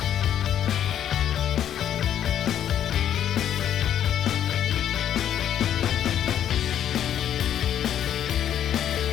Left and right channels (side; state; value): right; quieter; 10.2 dB